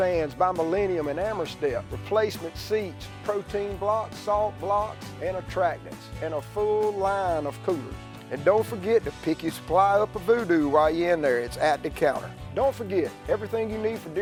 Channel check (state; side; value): identical; both; correlation 1.00